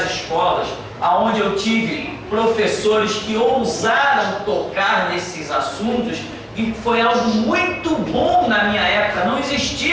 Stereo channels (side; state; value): both; identical; correlation 1.00